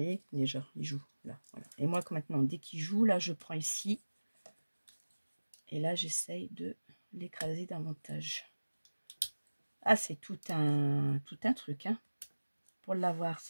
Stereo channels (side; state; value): both; inverted; correlation -1.00